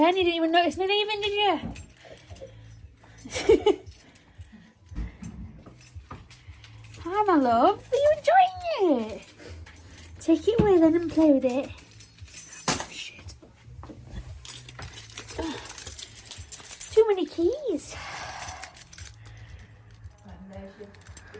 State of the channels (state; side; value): identical; both; correlation 1.00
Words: you didn't even notice me leaving, did you? Hi, my love. Are you enjoying it? Take it away then and play with it. Oh, shit. Too many keys.